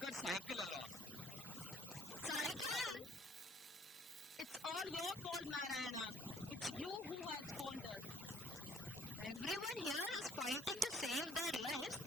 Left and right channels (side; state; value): both; normal; correlation 0.60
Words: her cycle along. Cycle? It's all your fault, Narayana. It's you who has faltered. Everyone here is fighting to save their lives